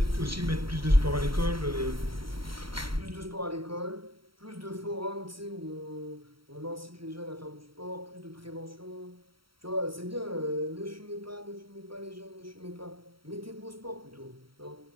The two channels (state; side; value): late; left; 0.74 ms